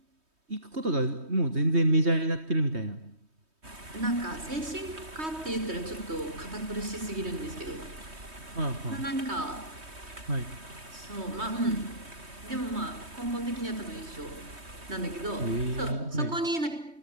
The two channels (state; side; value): late; left; 3.2 ms